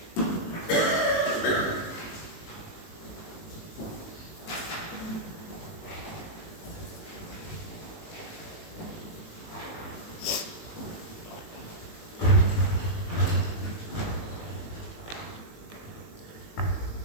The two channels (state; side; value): late; right; 19 ms